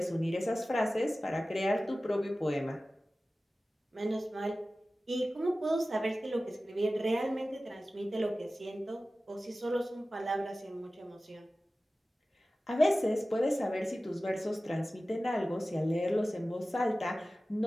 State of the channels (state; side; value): normal; both; correlation 0.96